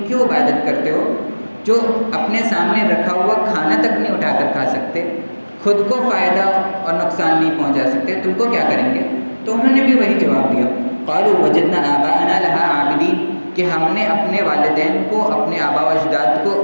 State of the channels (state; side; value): inverted; both; correlation -1.00